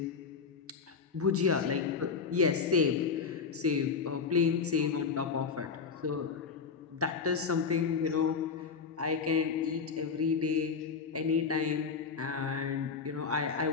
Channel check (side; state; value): right; quieter; 5.6 dB